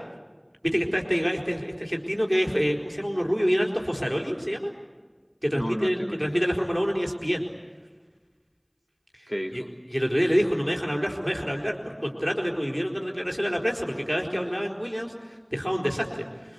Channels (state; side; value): identical; both; correlation 1.00